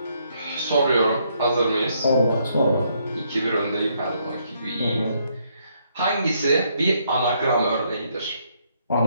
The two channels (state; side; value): inverted; both; correlation -0.72